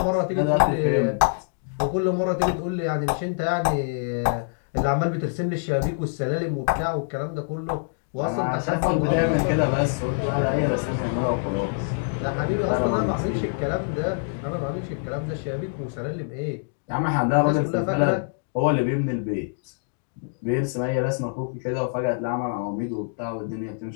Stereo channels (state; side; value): silent; right; digital silence